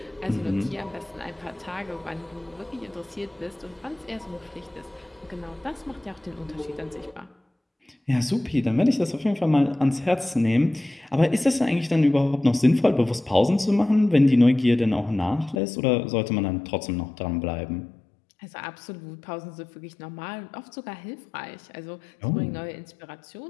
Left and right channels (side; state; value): right; drops out; at 15.6 s